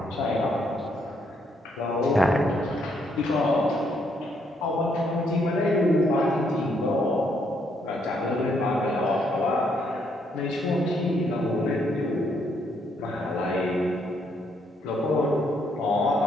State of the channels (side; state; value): both; normal; correlation 0.73